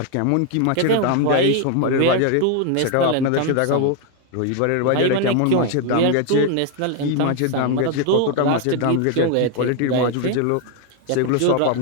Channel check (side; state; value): both; different; correlation 0.01